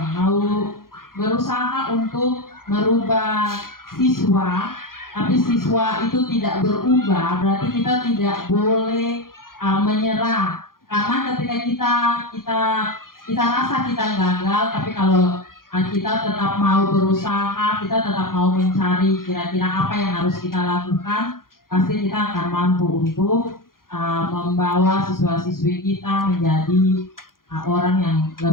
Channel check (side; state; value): right; late; 0.91 ms